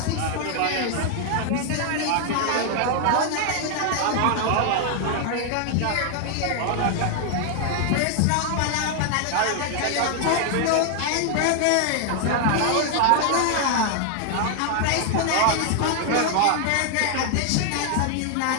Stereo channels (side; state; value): both; different; correlation 0.00